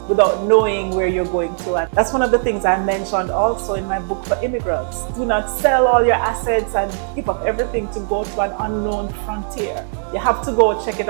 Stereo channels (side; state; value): left; silent; 67 dB below the other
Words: without knowing where you're going to. And that's one of the things I mentioned also in my book for immigrants. Do not sell all your assets and give up everything to go to an unknown frontier. You have to go check it